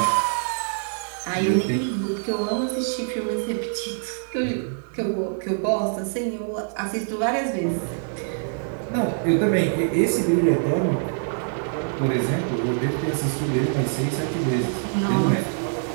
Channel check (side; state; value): left; silent; digital silence